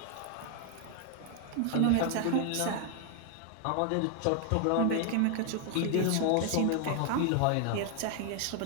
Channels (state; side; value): different; both; correlation 0.00